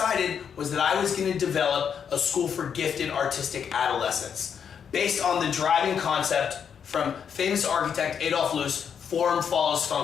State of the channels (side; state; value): right; quieter; 7.5 dB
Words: was that I was going to develop a school for gifted artistic adolescents based on the driving concept from famous architect Adolf Loos, form follows